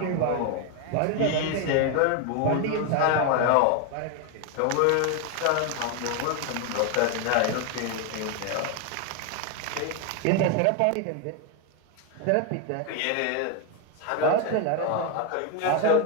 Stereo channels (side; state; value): both; different; correlation 0.01